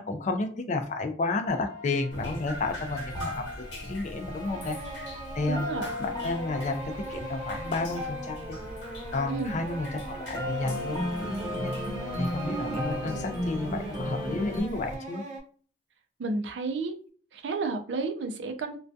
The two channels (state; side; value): normal; both; correlation 0.40